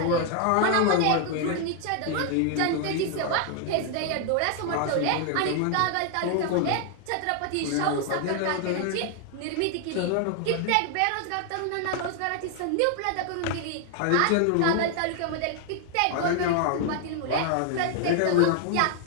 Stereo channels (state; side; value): different; both; correlation 0.00